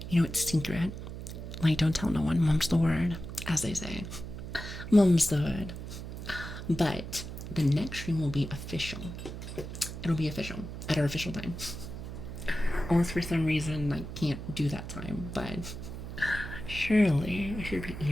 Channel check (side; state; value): right; noise; hum, 9 dB below the sound